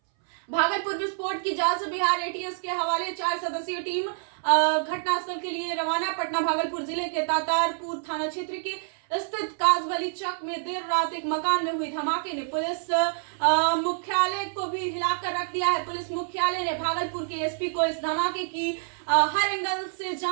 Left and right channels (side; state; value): left; silent; 60 dB below the other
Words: भागलपुर विस्फोट की जांच बिहार एटीएस के हवाले 4 सदस्यीय टीम घटनास्थल के लिए रवाना। पटना भागलपुर जिले के तातारपुर थाना क्षेत्र के स्थित काजवली चक में देर रात एक मकान में हुई धमाके ने पुलिस मुख्यालय को भी हिलाकर रख दिया है। पुलिस मुख्यालय ने भागलपुर के एसपी को इस धमाके की हर एंगल से